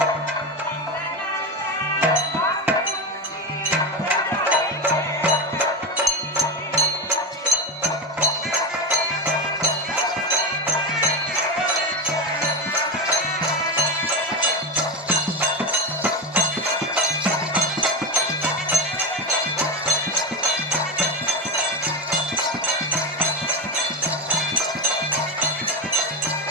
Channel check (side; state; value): both; normal; correlation 0.16